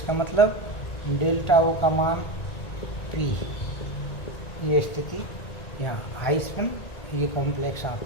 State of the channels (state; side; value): late; right; 1.9 ms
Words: मतलब डेल्टा ओ का मान 3। ये स्थिति यहाँ हाई स्पिन, ये कॉम्प्लेक्स